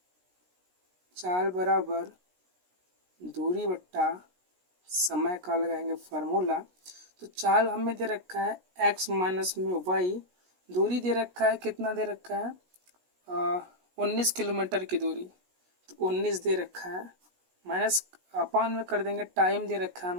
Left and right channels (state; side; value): late; left; 16 ms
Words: बराबर दूरी बट्टा समय का लगाएंगे फार्मूला। तो चाल हमें दे रखा है x माइनस में y, दूरी दे रखा है, कितना दे रखा है 19 किलोमीटर की दूरी, तो 19 दे रखा है, माइनस अपान में कर देंगे, टाइम दे रखा है